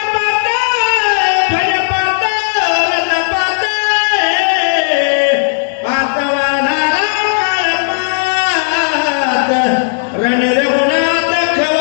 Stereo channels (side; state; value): right; silent; digital silence